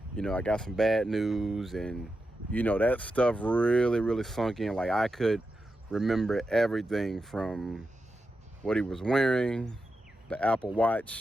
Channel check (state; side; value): normal; both; correlation 0.89